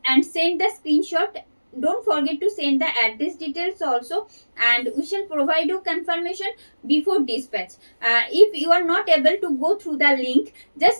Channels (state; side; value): inverted; both; correlation -1.00